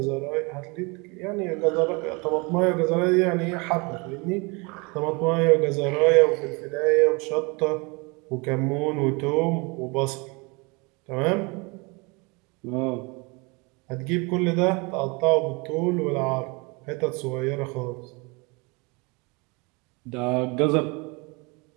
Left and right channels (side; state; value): left; quieter; 28.8 dB